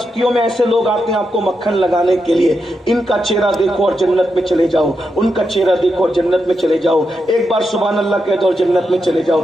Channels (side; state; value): both; normal; correlation 0.85